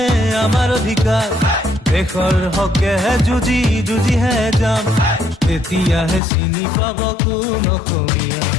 আমাৰ অধিকাৰ দেশৰ হকেহে যুঁজি যুঁজিহে যাম তেতিয়াহে চিনি পাব কোন অসমীয়া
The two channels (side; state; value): right; drops out; at 6.2 s